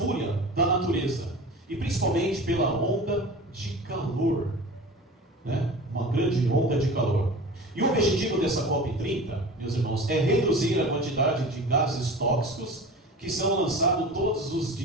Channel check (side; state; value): both; normal; correlation 0.36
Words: da natureza e principalmente pela onda de calor, uma grande onda de calor. E o objetivo dessa COP30, meus irmãos, é reduzir a quantidade de gases tóxicos que são lançados todos os